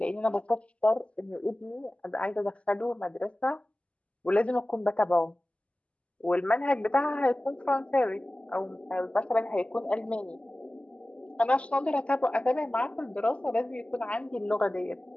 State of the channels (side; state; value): right; late; 0.060 ms